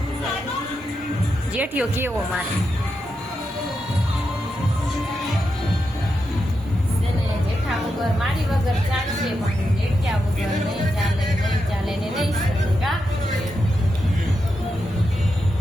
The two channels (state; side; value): normal; both; correlation 0.86